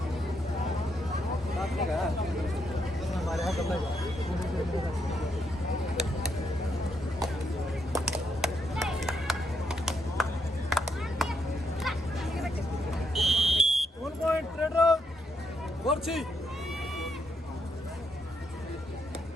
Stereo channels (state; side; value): normal; both; correlation 0.77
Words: हमारे यहाँ कब लगा? One point, red out. Gorchi.